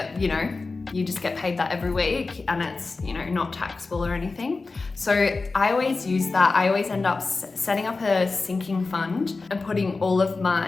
you know, you just get paid that every week, and it's, you know, not taxable or anything. So I always use that. I always end up setting up a sinking fund and putting all of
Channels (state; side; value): quieter; right; 3.9 dB